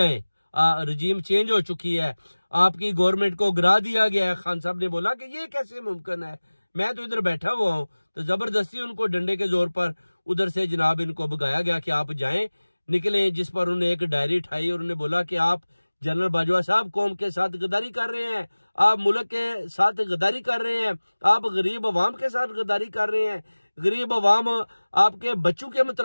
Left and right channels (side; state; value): both; inverted; correlation -1.00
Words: रजीम चेंज हो चुकी है, आपकी गवर्नमेंट को गिरा दिया गया है। खान साहब ने बोला कि ये कैसे मुमकिन है, मैं तो इधर बैठा हुआ हूं। तो जबरदस्ती उनको डंडे के जोर पर उधर से जनाब इनको भगाया गया कि आप जाएं, निकले। जिस पर उन्होंने एक डायरी उठाई और उन्होंने बोला कि आप जनरल बाजवा साहब कौम के साथ गद्दारी कर रहे हैं, आप मुल्क के साथ गद्दारी कर रहे हैं, आप गरीब अवाम के साथ गद्दारी कर रहे हैं। गरीब अवाम आपके बच्चों के